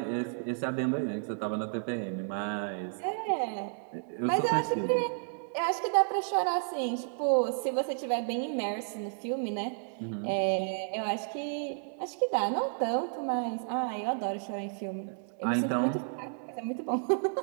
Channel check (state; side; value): silent; left; digital silence